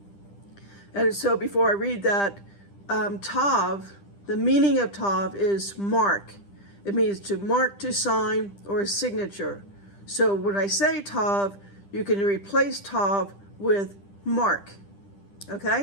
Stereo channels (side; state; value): right; late; 10 ms